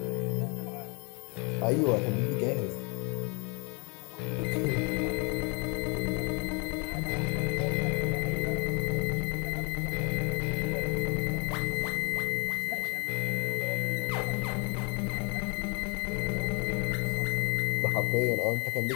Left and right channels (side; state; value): right; quieter; 32.3 dB